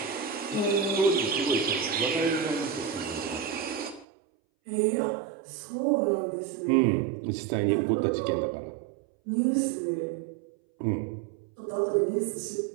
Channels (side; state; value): left; drops out; at 4.0 s